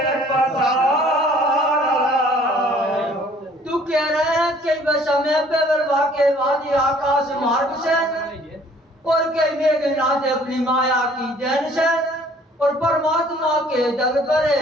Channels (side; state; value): both; normal; correlation 0.56